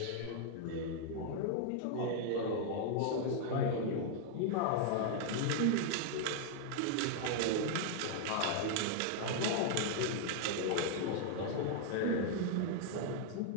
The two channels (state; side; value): different; both; correlation 0.00